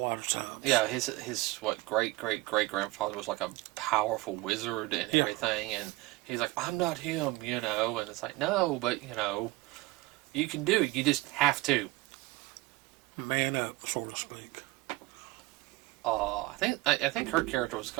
of times. Yeah, his great grandfather was like a powerful wizard and everything, and he's like, I'm not him, and it's like, no, but you can do it. You just have to. Man up, so to speak. I think her character was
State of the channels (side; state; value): left; quieter; 20.5 dB